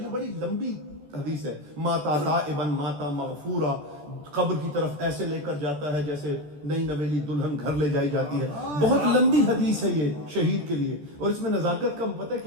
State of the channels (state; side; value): late; left; 14 ms